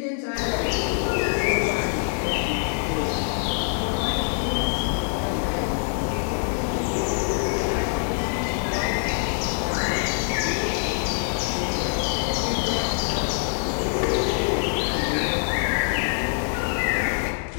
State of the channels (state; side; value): silent; right; 62 dB below the other